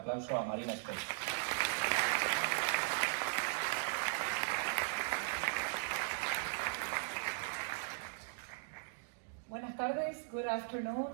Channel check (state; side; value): silent; left; digital silence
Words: a Marina Vortrag. Buenas tardes, good afternoon.